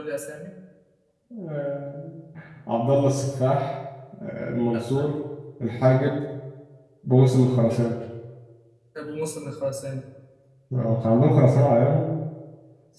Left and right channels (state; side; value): identical; both; correlation 1.00